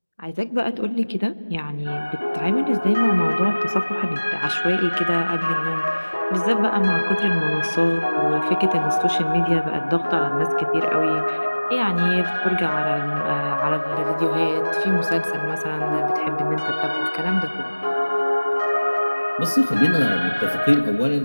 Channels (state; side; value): inverted; both; correlation -1.00